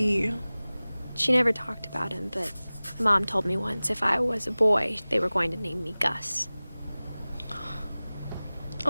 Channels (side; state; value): both; inverted; correlation -0.99